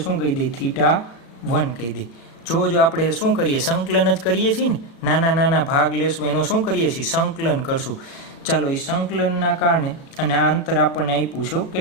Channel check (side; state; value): right; late; 36 ms